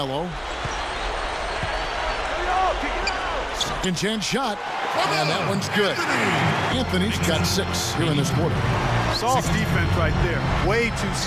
Second chance shot. And that one's good. Anthony's got 6 here in this quarter. Soft defense right there. Way too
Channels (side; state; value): both; identical; correlation 1.00